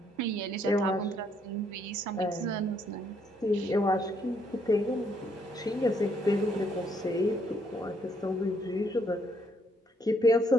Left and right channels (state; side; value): normal; both; correlation 0.70